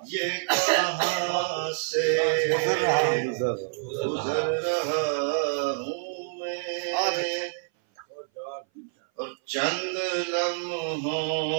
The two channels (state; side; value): silent; left; 58 dB below the other